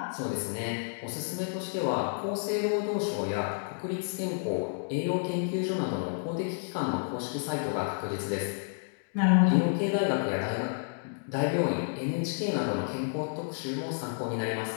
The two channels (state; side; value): silent; right; digital silence